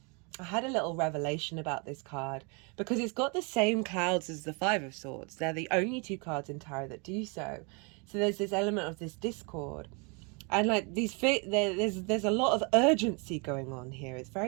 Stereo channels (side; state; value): left; quieter; 32.9 dB